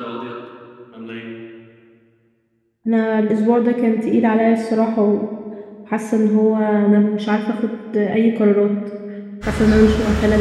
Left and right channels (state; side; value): identical; both; correlation 1.00